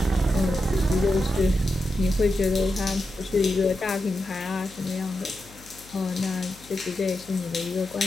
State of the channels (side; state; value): left; noise; hum, 22 dB below the sound